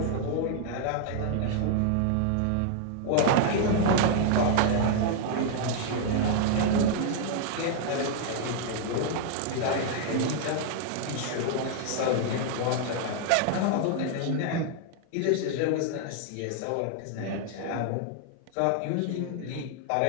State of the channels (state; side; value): different; both; correlation 0.00